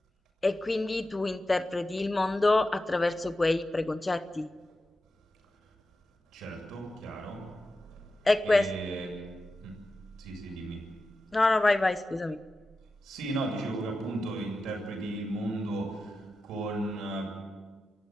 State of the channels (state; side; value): normal; both; correlation 0.92